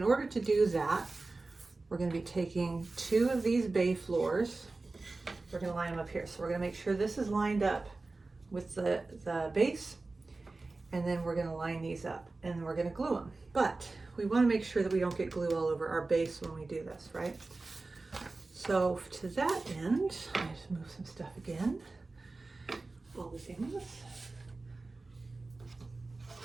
order to do that, we're going to be taking 2 of these bay floors. We're going to line them up here. So we're going to make sure this is lined up with the base, and then we're going to line these up, and then we're going to glue them. But we want to make sure that we don't get glue all over our base when we do this, right? So to that end, I just move some stuff again. All the things.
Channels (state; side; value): quieter; left; 3.5 dB